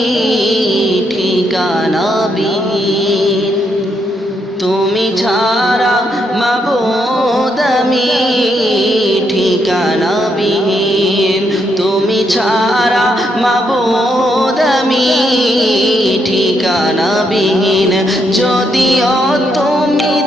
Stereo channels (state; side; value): normal; both; correlation 0.77